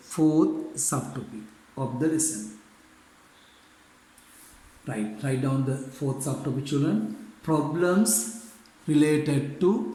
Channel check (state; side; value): identical; both; correlation 1.00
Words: fourth subtopic of the lesson. Right. Write down the fourth subtopic children. Problems related to